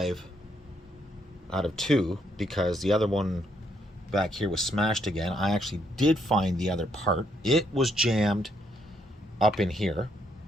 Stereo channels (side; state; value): both; normal; correlation 0.74